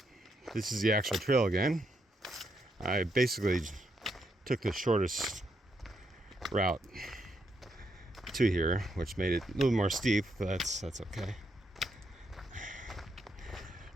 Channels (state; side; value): normal; both; correlation 0.78